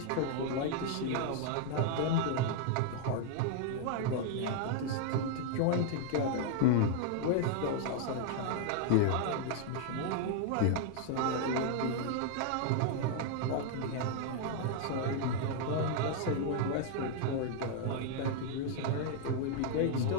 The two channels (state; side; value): different; both; correlation 0.00